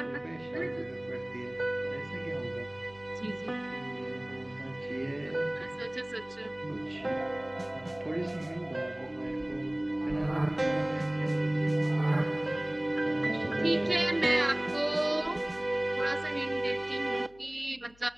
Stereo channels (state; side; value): noise; left; hum, 27 dB below the sound